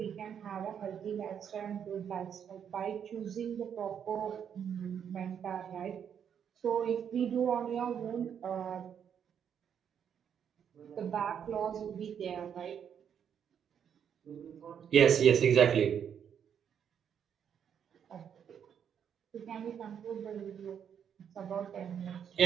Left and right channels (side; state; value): left; quieter; 8.2 dB